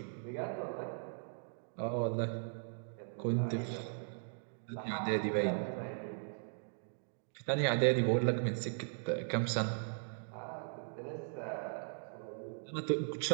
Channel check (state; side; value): silent; left; digital silence